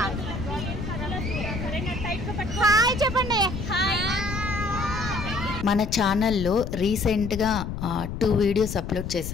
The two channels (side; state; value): left; noise; rumble, 6 dB below the sound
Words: సరేనా? టైట్ గా పట్టుకో. హాయ్ చెప్పండి. హాయ్. మన ఛానల్లో రీసెంట్గా 2 వీడియోస్ అప్లోడ్